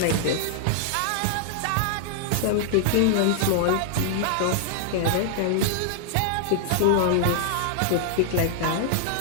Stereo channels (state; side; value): different; both; correlation -0.01